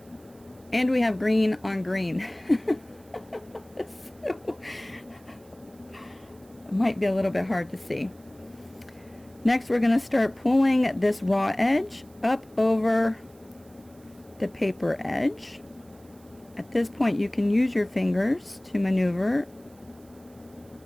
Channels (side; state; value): right; noise; hiss, 29 dB below the sound